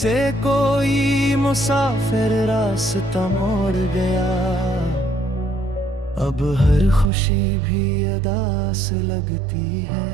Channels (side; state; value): left; drops out; at 7.1 s